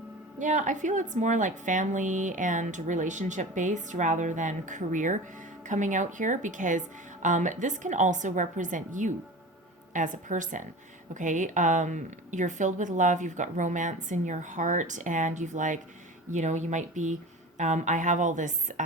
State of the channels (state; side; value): normal; both; correlation 0.34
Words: I feel it's more like family and relationship based rather than career coming out here, because this can also represent you as a person, okay? You're filled with love, you've got romance in your heart, and you've you might be, I have all this